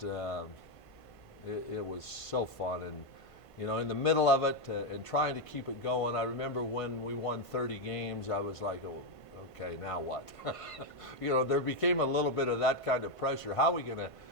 it was so fun, and you know, in the middle of it and trying to keep it going. I remember when we won 30 games, I was like, oh, okay, now what? You know, there became a little bit of that kind of pressure. How are we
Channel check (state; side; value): late; right; 1.5 ms